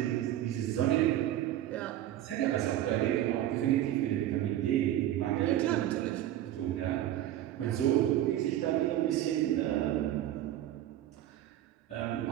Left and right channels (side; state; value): left; quieter; 12.8 dB